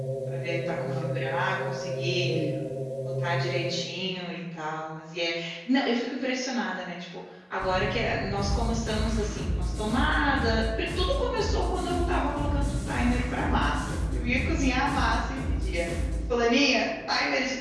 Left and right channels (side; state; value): both; identical; correlation 1.00